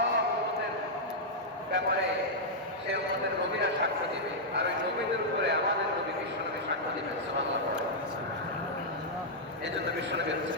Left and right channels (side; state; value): both; normal; correlation -0.06